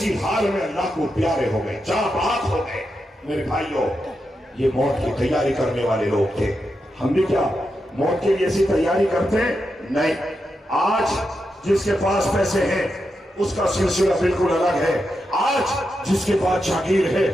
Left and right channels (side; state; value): both; normal; correlation 0.86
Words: حال میں اللہ کو پیارے ہو گئے، جاں بحق ہو گئے۔ میرے بھائیوں، یہ موت کی تیاری کرنے والے لوگ تھے۔ ہم بھی کیا موت کے لیے ایسی تیاری کرتے ہیں؟ نہیں۔ آج جس کے پاس پیسے ہیں اس کا سلسلہ بالکل الگ ہے، آج جس کے پاس جاگیر ہے